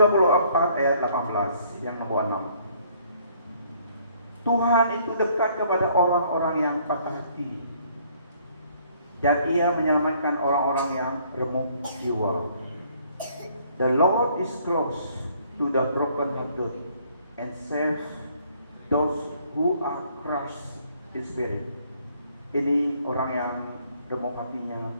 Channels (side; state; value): both; inverted; correlation -0.63